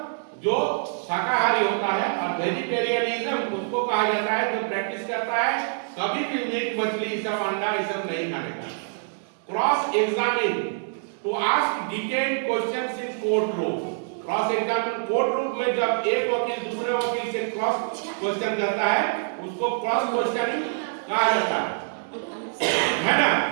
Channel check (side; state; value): left; silent; digital silence